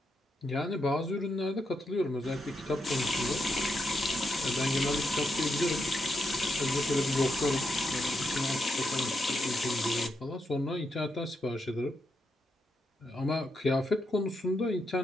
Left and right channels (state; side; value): normal; both; correlation 0.82